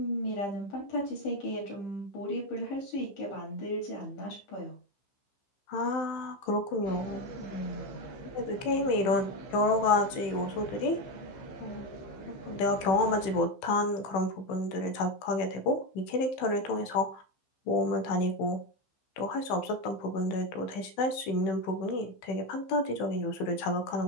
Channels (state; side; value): late; right; 15 ms